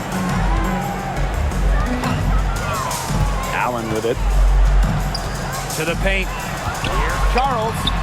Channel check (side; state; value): both; identical; correlation 1.00